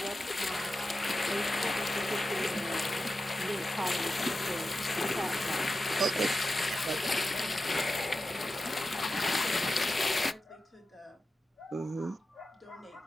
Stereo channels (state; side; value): normal; both; correlation 0.92